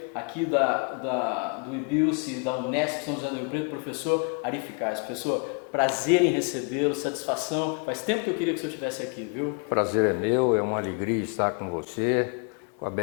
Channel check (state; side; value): quieter; right; 35.7 dB